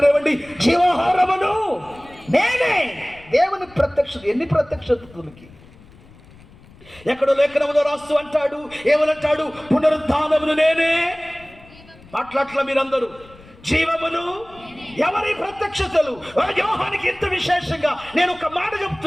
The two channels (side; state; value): left; noise; rumble, 24 dB below the sound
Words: జీవాహారమును నేనే. దేవుని ప్రత్యక్షత. ఎన్ని ప్రత్యక్షతలకి! ఎక్కడో లేఖనములో రాస్తూ అంటాడు, ఏమనంటాడు? పునరుద్ధానమును నేనే. మాట్లాడట్ల మీరందరూ. జీవమును ఎవరి ప్రత్యక్షతలు? యోహానికి ఎంత విశేషంగా నేను ఒక మాట